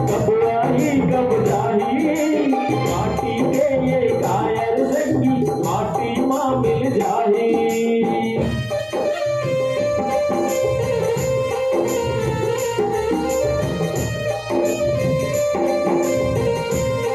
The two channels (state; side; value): identical; both; correlation 1.00